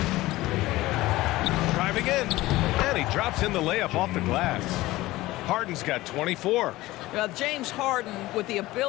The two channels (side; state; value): right; quieter; 18.1 dB